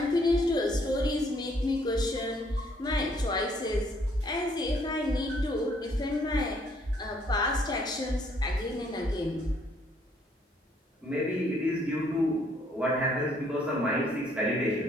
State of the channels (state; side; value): normal; both; correlation 0.66